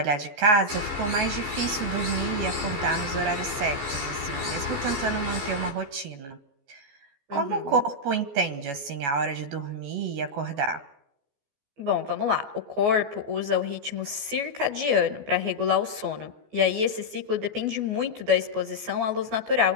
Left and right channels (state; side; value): late; left; 14 ms